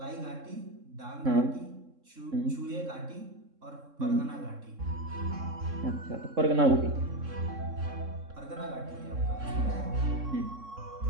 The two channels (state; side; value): late; left; 3.6 ms